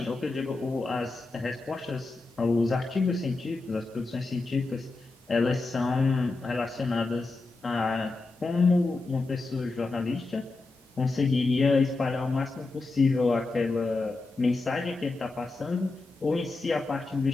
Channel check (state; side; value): quieter; right; 3.4 dB